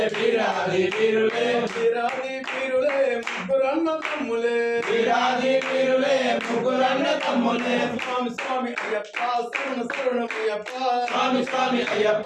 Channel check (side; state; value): both; identical; correlation 1.00